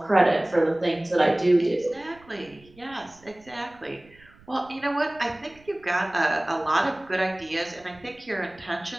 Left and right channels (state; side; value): noise; right; rumble, 27 dB below the sound